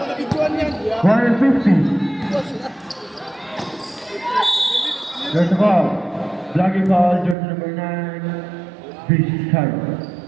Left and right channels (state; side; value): drops out; left; at 7.4 s